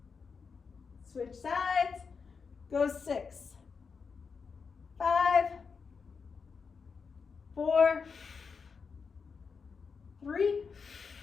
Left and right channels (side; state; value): right; quieter; 5.4 dB